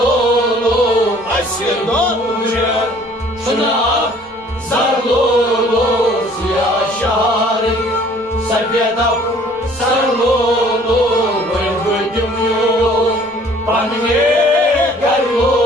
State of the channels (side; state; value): right; noise; rumble, 30 dB below the sound